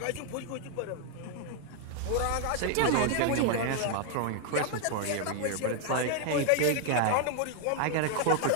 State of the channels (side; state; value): both; different; correlation 0.00